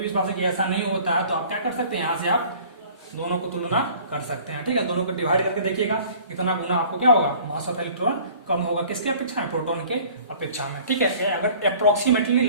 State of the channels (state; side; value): inverted; both; correlation -0.50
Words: विश्वास है कि ऐसा नहीं होता है, तो आप क्या कर सकते हैं, यहाँ से आप दोनों को तुलना कर सकते हैं, ठीक है। दोनों को डिवाइड करके देखिएगा कितना गुना आपको क्या होगा, मास ऑफ इलेक्ट्रॉन कम होगा, किसके अपेक्षा में, प्रोटॉन के अपेक्षा में, ठीक है। अगर अप्रोक्सीमेटली